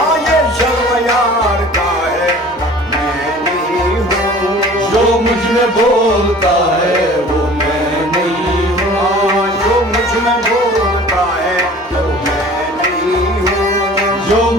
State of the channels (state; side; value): normal; both; correlation 0.46